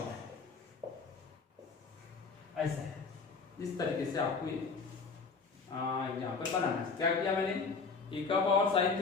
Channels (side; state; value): right; quieter; 4.7 dB